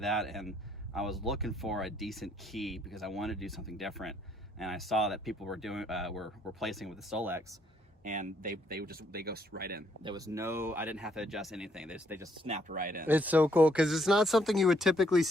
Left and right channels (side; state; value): both; normal; correlation 0.69